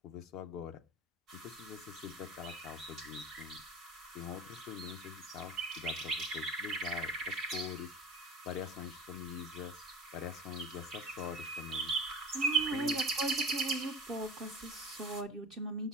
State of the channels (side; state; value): both; normal; correlation 0.34